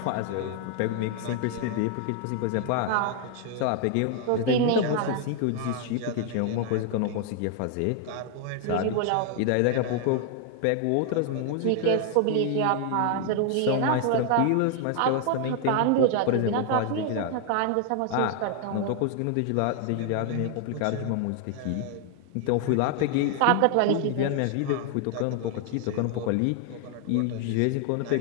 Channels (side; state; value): both; different; correlation 0.00